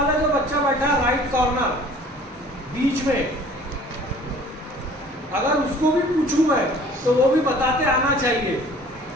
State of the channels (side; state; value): both; normal; correlation 0.50